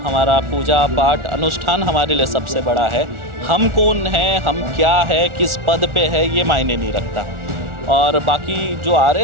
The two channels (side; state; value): left; late; 1.4 ms